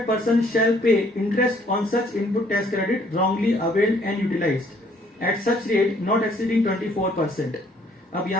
person shall pay interest on such input tax credit wrongly availed and utilised at such rate not exceeding 24%। अब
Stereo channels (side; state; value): both; normal; correlation 0.63